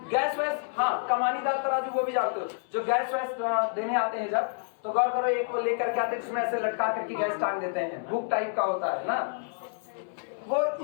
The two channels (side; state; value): right; silent; 59 dB below the other